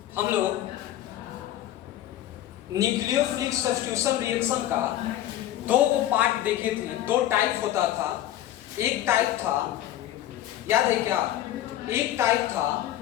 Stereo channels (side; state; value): right; quieter; 13.1 dB